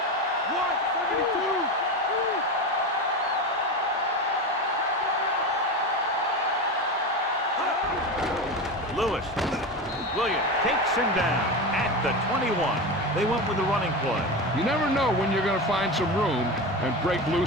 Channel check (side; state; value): both; normal; correlation 0.22